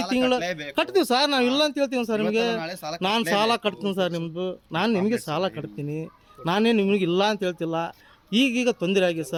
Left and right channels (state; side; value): identical; both; correlation 1.00